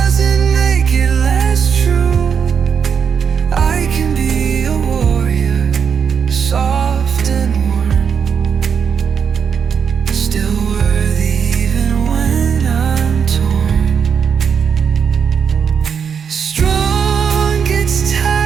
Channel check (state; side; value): quieter; left; 6.8 dB